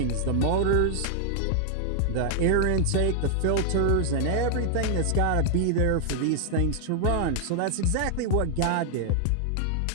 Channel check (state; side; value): different; both; correlation 0.00